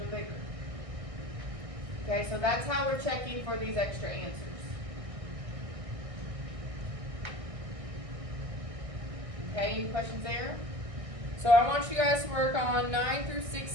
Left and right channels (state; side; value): late; left; 1.6 ms